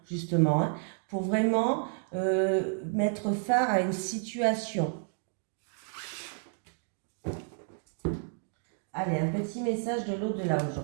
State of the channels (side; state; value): left; silent; 57 dB below the other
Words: justement, hein, pour vraiment mettre fin à une situation. Allez, un petit message de l'au-delà